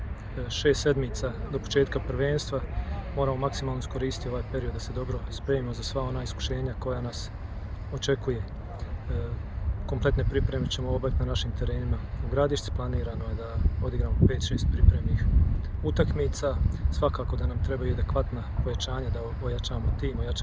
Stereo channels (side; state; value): both; identical; correlation 1.00